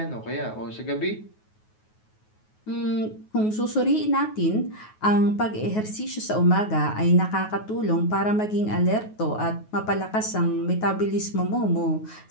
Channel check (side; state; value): right; late; 9.4 ms